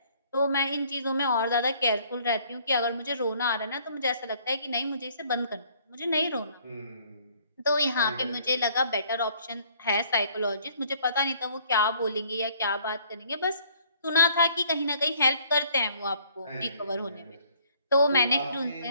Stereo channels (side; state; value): both; inverted; correlation -0.60